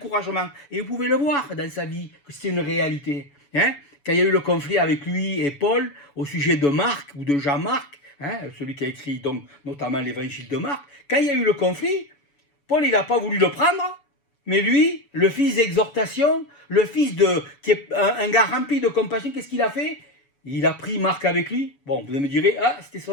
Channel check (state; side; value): late; right; 7.1 ms